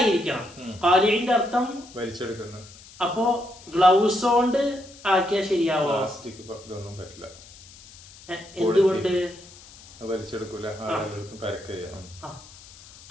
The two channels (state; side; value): noise; left; hiss, 21 dB below the sound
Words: ഖാലിഇന്റെ അർത്ഥം വലിച്ചെടുക്കുന്ന. അപ്പോ ഗ്ലൗസ് കൊണ്ട് ആക്കിയാൽ ശരിയാവോ? പറ്റില്ല. എന്തുകൊണ്ട്? വലിച്ചെടുക്കൂല.